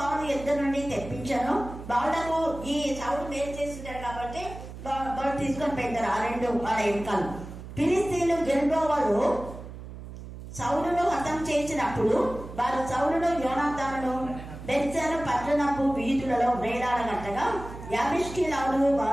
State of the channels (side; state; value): right; noise; hum, 12 dB below the sound